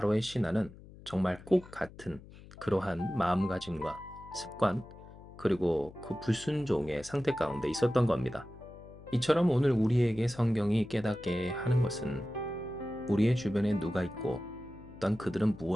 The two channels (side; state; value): left; noise; hum, 19 dB below the sound